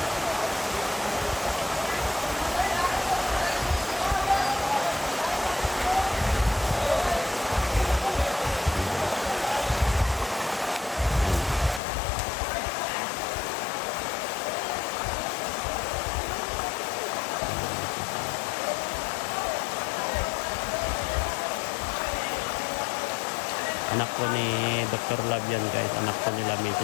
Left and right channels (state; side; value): drops out; right; at 11.8 s